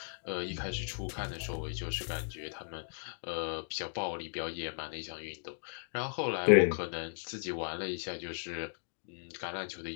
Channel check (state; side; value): silent; right; digital silence